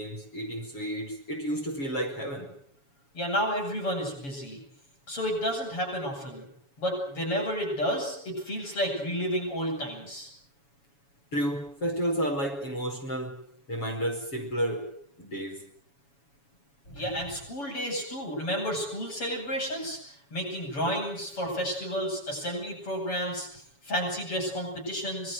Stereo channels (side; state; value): right; late; 7.1 ms